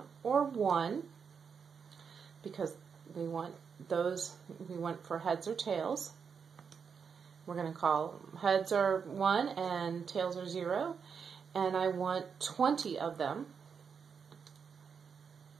or 1, because we want those, we want for heads or tails. We're going to call heads are 1 and tails are 0. And I want 20 of them.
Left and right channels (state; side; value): quieter; left; 6.3 dB